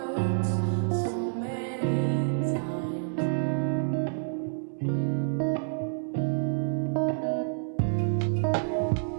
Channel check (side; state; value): left; silent; 59 dB below the other